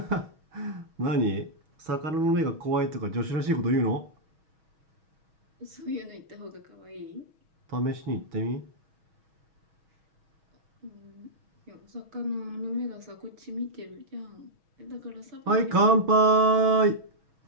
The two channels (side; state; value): left; late; 6.3 ms